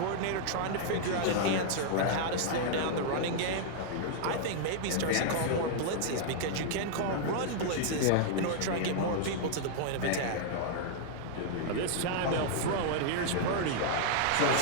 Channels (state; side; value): different; both; correlation -0.01